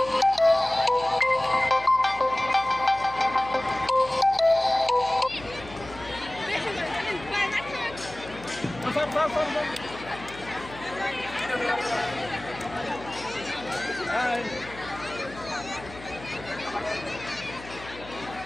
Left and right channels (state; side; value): noise; left; hum, 17 dB below the sound